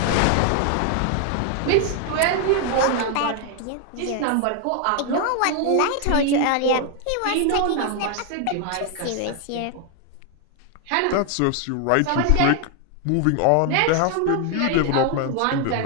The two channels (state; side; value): different; both; correlation 0.01